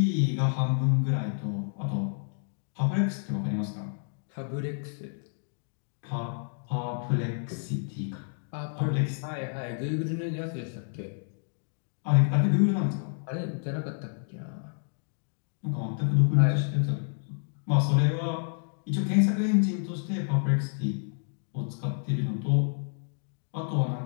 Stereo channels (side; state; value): right; silent; digital silence